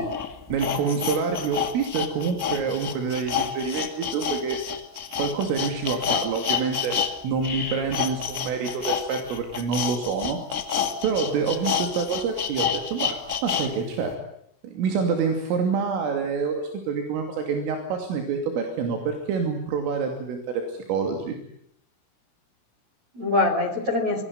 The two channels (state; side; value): late; left; 16 ms